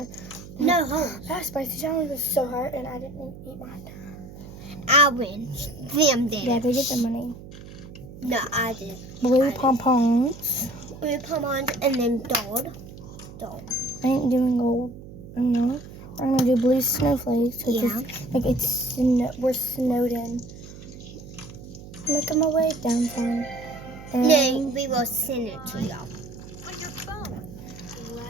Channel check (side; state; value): right; noise; hum, 15 dB below the sound